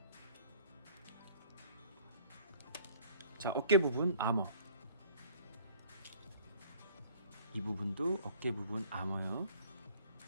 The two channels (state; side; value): inverted; both; correlation -0.54